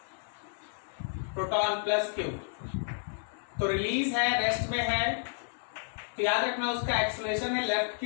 प्रोटॉन प्लस क्यू, तो रिलीज है, रेस्ट में है, तो याद रखना उसका एक्सेलरेशन है लेफ्ट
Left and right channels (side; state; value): right; silent; 56 dB below the other